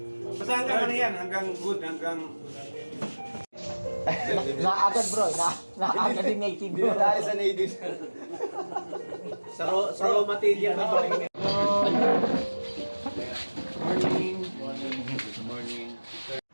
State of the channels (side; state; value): both; inverted; correlation -1.00